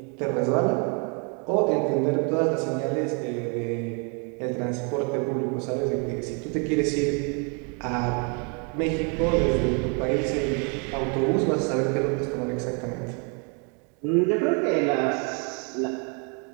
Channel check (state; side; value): quieter; left; 36.7 dB